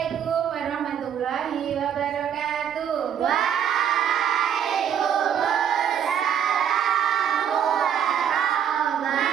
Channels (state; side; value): quieter; left; 8.8 dB